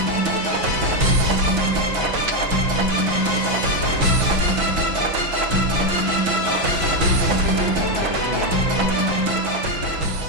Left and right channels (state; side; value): late; left; 6.0 ms